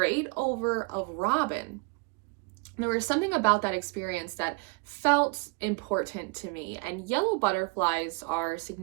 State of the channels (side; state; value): left; quieter; 28.9 dB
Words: over a robin. There was something about that experience that felt important to me, and yellow butterflies are